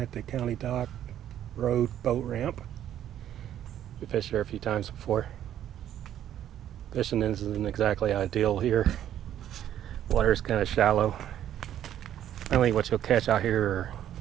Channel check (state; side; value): quieter; left; 11.0 dB